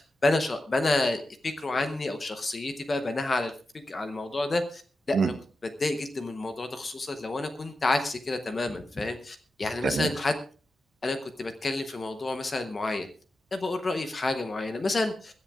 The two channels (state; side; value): normal; both; correlation 0.91